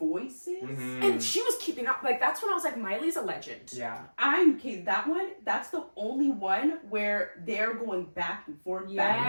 and she was keeping up. Like that's when I was like, Miley's a legend. Yeah. That one, that's the only one where they're going back and forth, back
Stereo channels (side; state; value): both; inverted; correlation -1.00